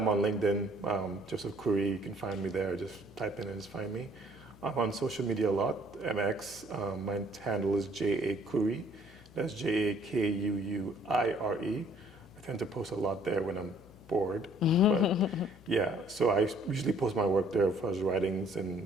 on LinkedIn, Joseph Curry. You can find me there. Just type in and just find me. I'm on social media a lot, MX. My handle is J.A. Curry. That's Jakuuire. I tend to post a lot there when I'm bored. But yeah, so I usually post my work there for his writings and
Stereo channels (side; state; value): left; noise; hum, 23 dB below the sound